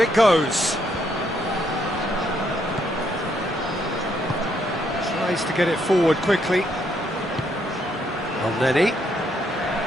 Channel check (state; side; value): normal; both; correlation 0.73